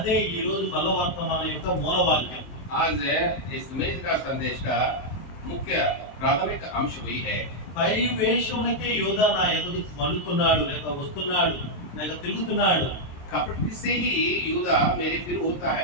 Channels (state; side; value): late; right; 23 ms